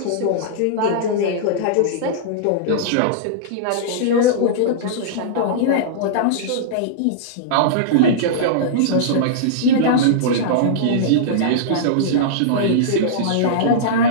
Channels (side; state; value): both; different; correlation -0.03